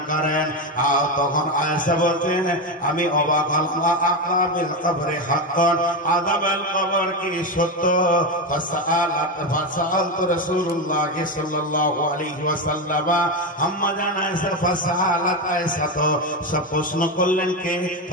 করেন। আর তখন আয়েশা বলছেন, আমি অবাক হলাম, আযাবিল কবরে হাক্কান, আযাবাল কবর কি সত্য? ফাসাআলতু রাসূলুল্লাহ সাল্লাল্লাহু আলাইহি ওয়াসাল্লাম, আম্মা জান আয়েশা ফাসাআলাত আয়েশা, তো সব প্রশ্ন করলেন কে?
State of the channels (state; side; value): normal; both; correlation 0.13